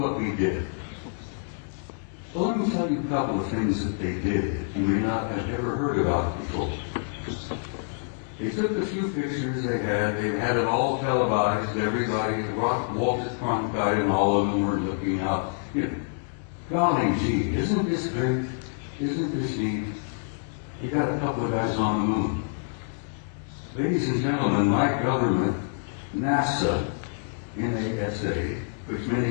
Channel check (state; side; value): silent; right; 60 dB below the other